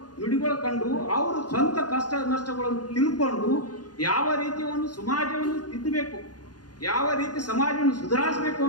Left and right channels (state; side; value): late; right; 0.69 ms